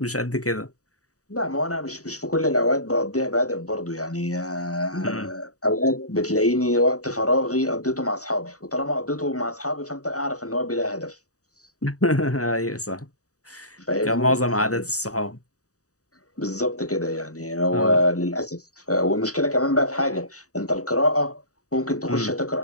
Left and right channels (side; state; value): right; late; 0.66 ms